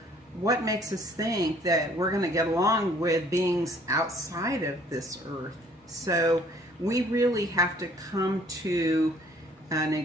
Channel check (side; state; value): both; normal; correlation 0.58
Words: what makes us think that we're going to get along with beings outside of this earth? So we really have to come to an